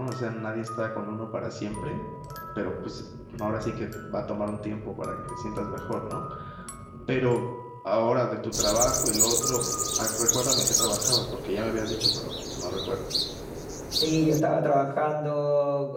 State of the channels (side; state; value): both; identical; correlation 1.00